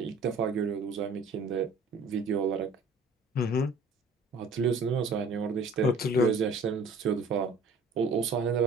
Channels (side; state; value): left; quieter; 3.2 dB